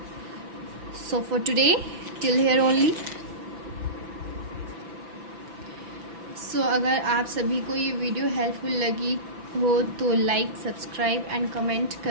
So for today till here only. सो अगर आप सभी को ये वीडियो हेल्पफुल लगी हो तो लाइक, सब्सक्राइब एंड कमेंट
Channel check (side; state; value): left; late; 5.9 ms